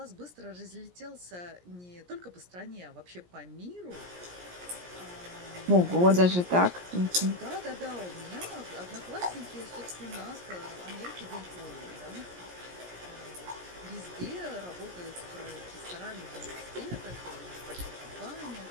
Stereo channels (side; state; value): left; late; 17 ms